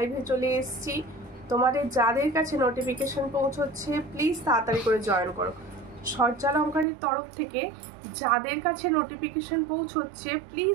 চলে এসেছি। তোমাদের যাদের কাছে নোটিফিকেশন পৌঁছচ্ছে প্লিজ তাড়াতাড়ি করে জয়েন করো। সূর্যালঙ্কারের তরফ থেকে যাদের কাছে নোটিফিকেশন পৌঁছচ্ছে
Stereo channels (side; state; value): left; drops out; at 6.9 s